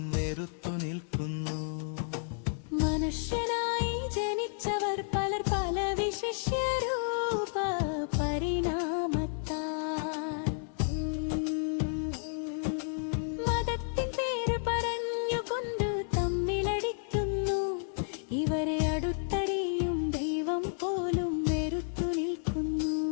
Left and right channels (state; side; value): silent; right; 57 dB below the other